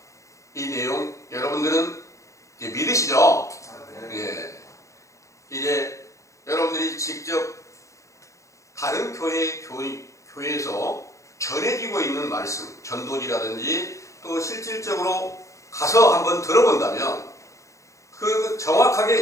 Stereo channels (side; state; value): right; late; 0.15 ms